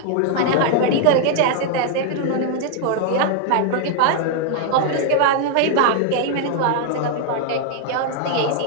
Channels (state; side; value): different; both; correlation 0.00